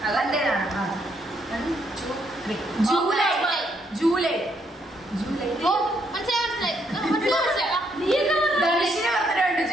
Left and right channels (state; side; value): normal; both; correlation 0.74